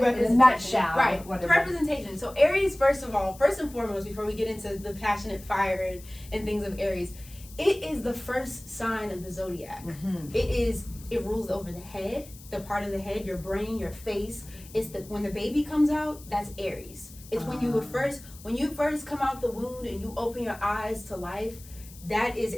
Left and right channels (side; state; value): left; noise; hiss, 20 dB below the sound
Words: representation, nutshell? right? What The is it? representation. So Aries, first and foremost, before we get into the passionate fire and things of Aries, it is the first sign of the zodiac. Mhm. It rules over the head, the part of the head, your brain, your face. It's when the baby comes out, that's Aries. It's when you first come out the womb and you open your eyes to life. That is